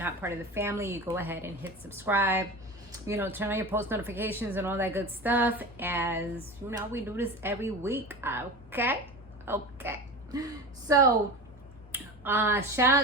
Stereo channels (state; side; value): normal; both; correlation 0.29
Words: not part of the family, you go ahead and hit subscribe, turn on your post notifications and all that good stuff, as we do this every week. Okay so shout